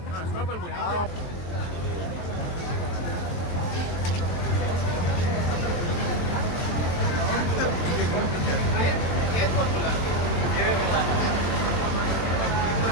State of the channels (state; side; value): late; right; 23 ms